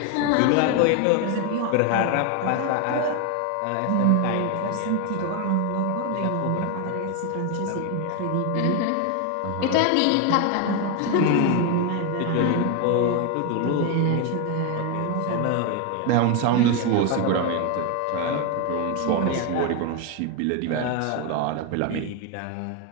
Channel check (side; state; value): both; different; correlation 0.01